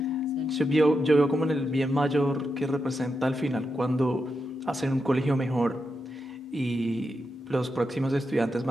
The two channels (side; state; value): both; normal; correlation 0.86